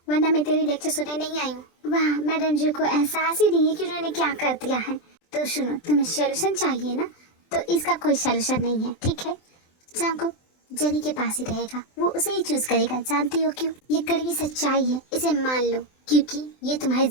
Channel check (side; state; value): right; late; 23 ms